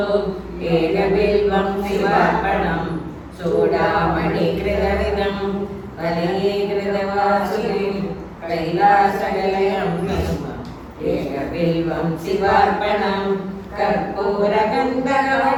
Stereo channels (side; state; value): both; identical; correlation 1.00